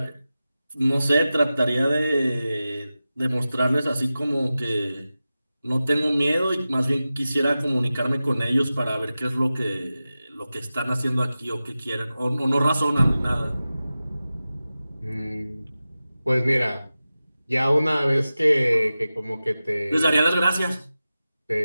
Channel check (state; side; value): inverted; both; correlation -0.95